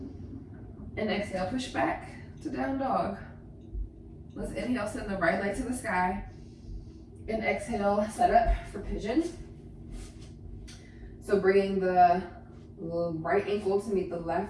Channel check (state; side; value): identical; both; correlation 1.00